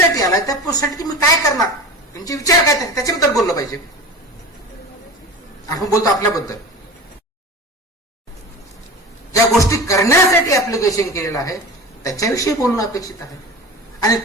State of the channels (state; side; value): normal; both; correlation 0.33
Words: आलाय त्या पोस्टसाठी तुम्ही काय करणार, तुमचे विचार काय त्याच्याबद्दल बोललं पाहिजे. आपण बोलतो आपल्याबद्दल, ज्या गोष्टी करण्यासाठी ऍप्लिकेशन केलेलं आहे त्याच्याविषयी बोलणं अपेक्षित आहे, आणि